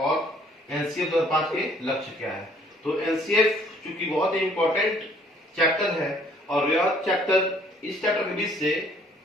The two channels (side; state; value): both; normal; correlation 0.60